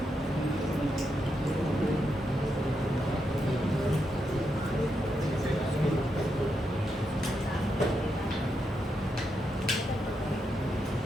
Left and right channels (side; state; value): both; normal; correlation 0.83